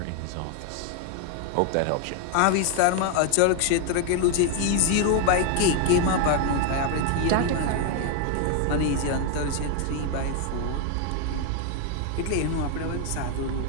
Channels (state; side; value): different; both; correlation 0.01